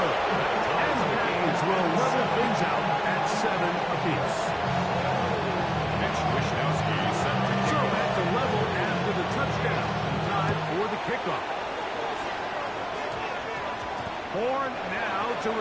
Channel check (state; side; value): identical; both; correlation 1.00